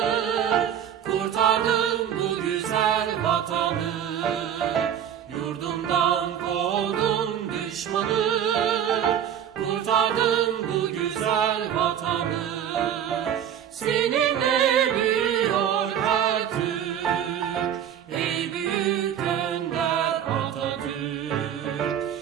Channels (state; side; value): quieter; left; 9.4 dB